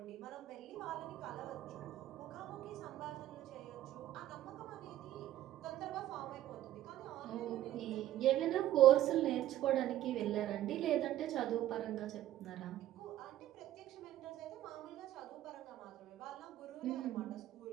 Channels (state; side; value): quieter; left; 13.3 dB